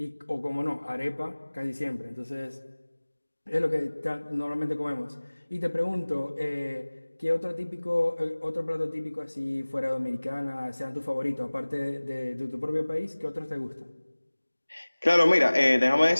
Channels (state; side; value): inverted; both; correlation -1.00